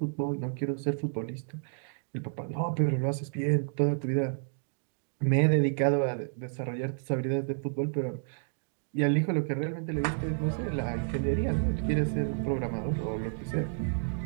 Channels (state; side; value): silent; left; digital silence